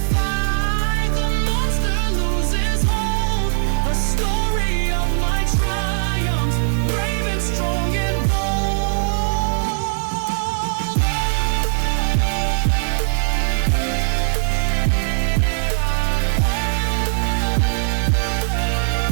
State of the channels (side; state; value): left; silent; digital silence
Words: the monster loses hold. A story of my triumphs, brave and strong and bold.